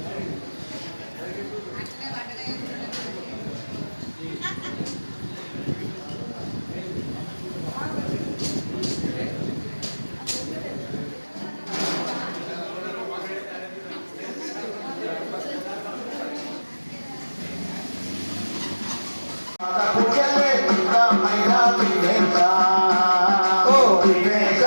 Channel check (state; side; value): inverted; both; correlation -1.00